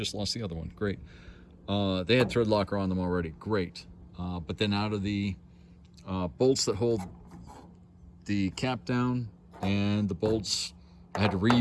lost the other one. Great. They had thread locker on them already. Great. But then out of the bolts that hold the cap down and the bolts, I had to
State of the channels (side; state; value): both; identical; correlation 1.00